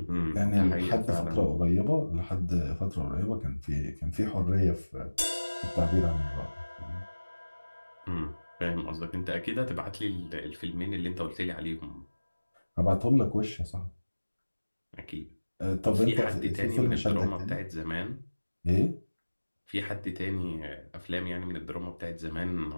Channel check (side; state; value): both; inverted; correlation -1.00